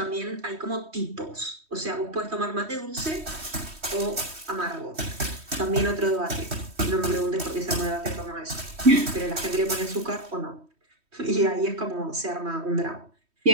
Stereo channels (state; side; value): late; left; 3.1 ms